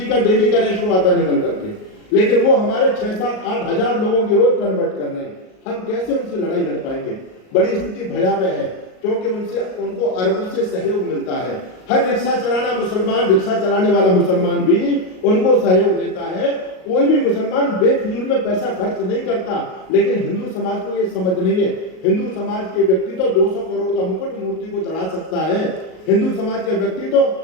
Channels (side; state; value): right; late; 38 ms